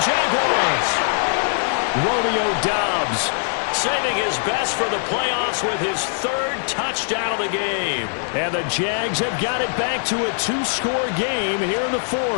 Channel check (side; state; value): right; silent; digital silence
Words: Jaguars! Romeo Dobbs saving his best for the playoffs with his 3rd touchdown of the game. And the Jags have got it back to a 2-score game here in the